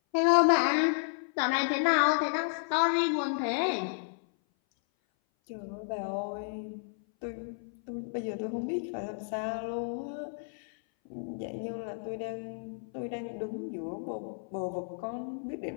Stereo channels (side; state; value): right; silent; 56 dB below the other